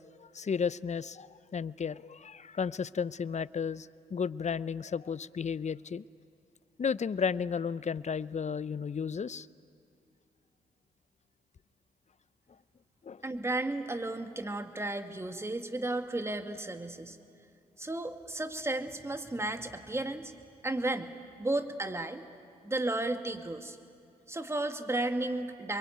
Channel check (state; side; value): normal; both; correlation 0.61